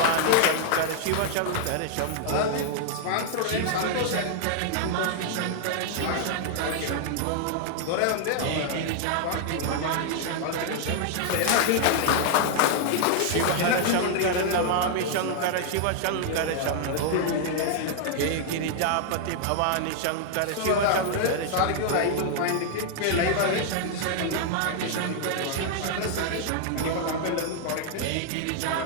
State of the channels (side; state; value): both; different; correlation 0.00